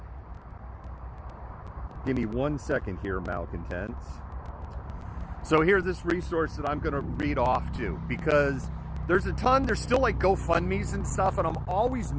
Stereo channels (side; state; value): both; identical; correlation 1.00